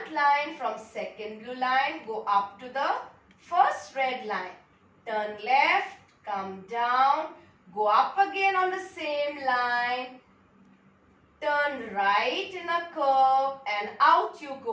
line from second blue line, go up to the first red line, turn left, come down, go up again on the same line, turn right in a curve and out you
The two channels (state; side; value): identical; both; correlation 1.00